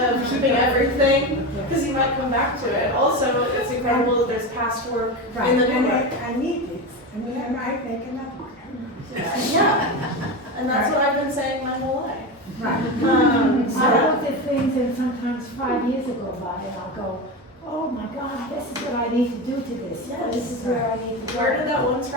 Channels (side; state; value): both; normal; correlation 0.20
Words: keeping everything, because you might come back to it. Also, it's incredible that there's past work in the and new work. I need these. I mean, I might make another one. Yeah, and that's what I've been saying my whole life. Right. I looked at things, and sometimes 5 years go by, and I'll go, oh my God, this is what I need to do to this. Yeah, this is where I need to go. Where did that one